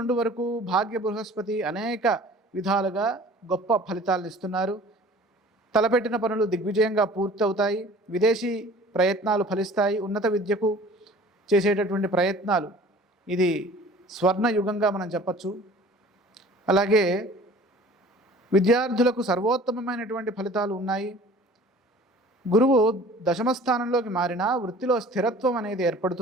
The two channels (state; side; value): normal; both; correlation 0.47